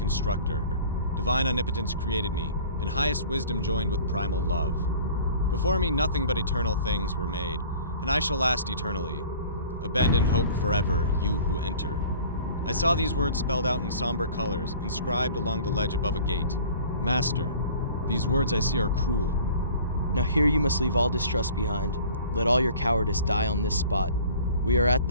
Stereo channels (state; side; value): inverted; both; correlation -0.47